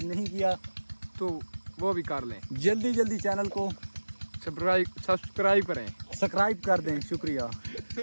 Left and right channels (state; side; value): inverted; both; correlation -1.00